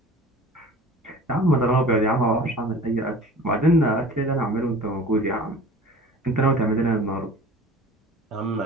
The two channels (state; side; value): normal; both; correlation 0.42